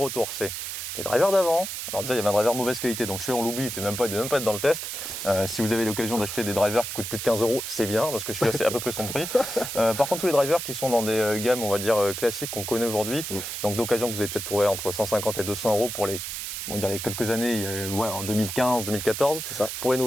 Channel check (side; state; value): right; noise; hiss, 6 dB below the sound